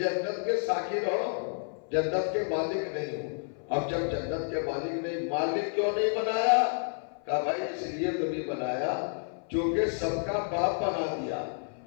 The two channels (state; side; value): silent; right; 56 dB below the other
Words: کے ساکن ہو, جنت کے مالک نہیں ہو. اب جب جنت کے مالک نہیں, مالک کیوں نہیں بنایا؟ کہا بھائی اس لیے تو نہیں بنایا چونکہ سب کا باپ بنا دیا.